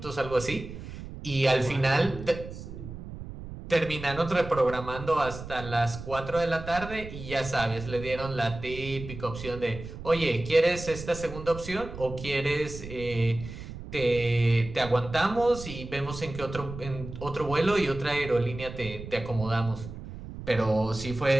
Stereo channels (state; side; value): noise; right; rumble, 11 dB below the sound